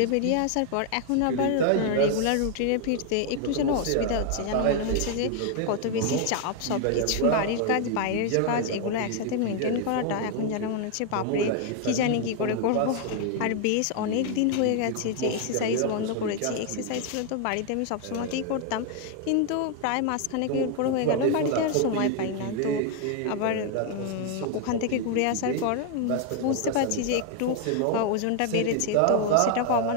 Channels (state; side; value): different; both; correlation 0.00